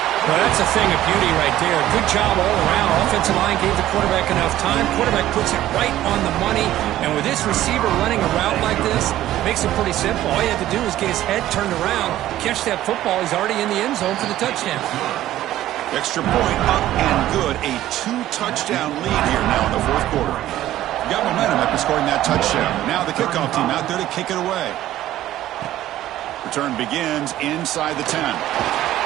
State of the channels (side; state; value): left; quieter; 13.8 dB